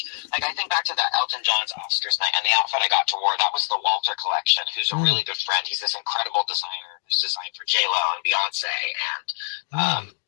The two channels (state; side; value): silent; right; digital silence